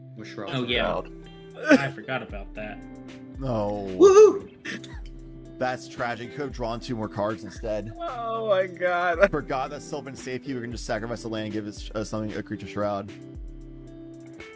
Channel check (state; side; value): identical; both; correlation 1.00